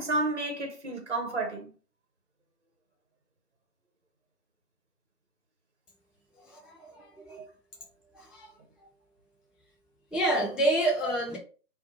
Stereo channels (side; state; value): both; normal; correlation 0.28